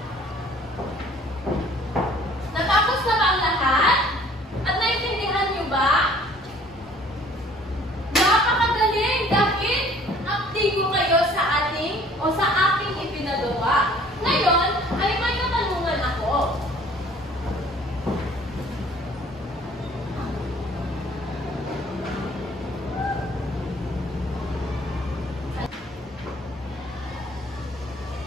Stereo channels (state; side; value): normal; both; correlation 0.54